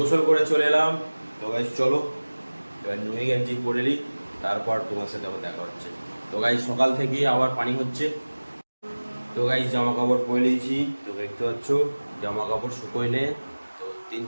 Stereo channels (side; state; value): both; inverted; correlation -1.00